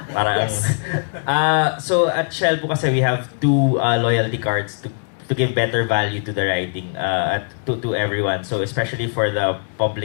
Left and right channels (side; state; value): right; silent; 60 dB below the other